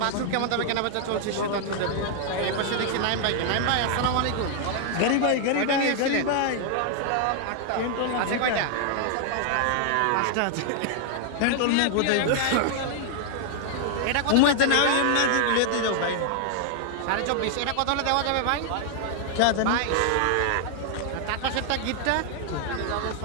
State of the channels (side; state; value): both; different; correlation 0.00